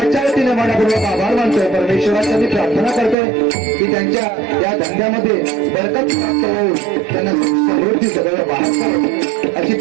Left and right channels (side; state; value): left; drops out; at 3.2 s